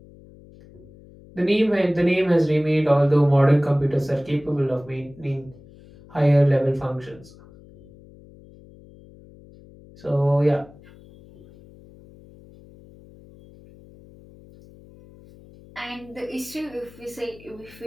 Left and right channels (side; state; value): left; noise; hum, 23 dB below the sound